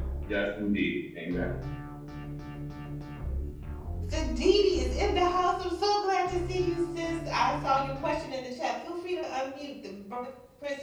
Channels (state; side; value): identical; both; correlation 1.00